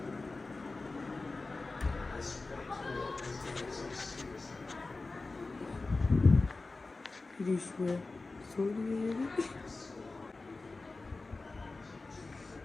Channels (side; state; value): right; quieter; 3.5 dB